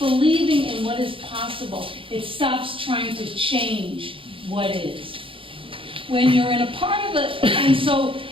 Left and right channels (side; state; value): left; late; 0.25 ms